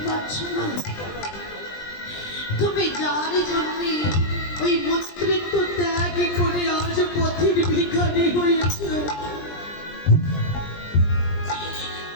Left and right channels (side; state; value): right; late; 20 ms